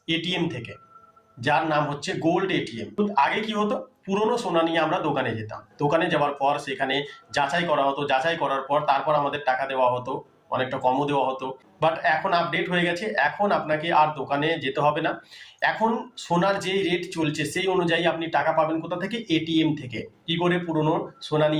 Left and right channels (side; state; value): both; identical; correlation 1.00